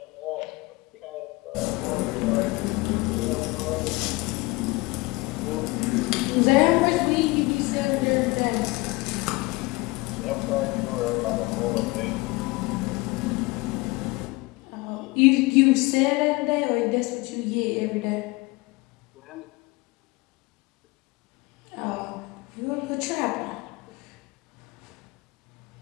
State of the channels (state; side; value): quieter; right; 23.3 dB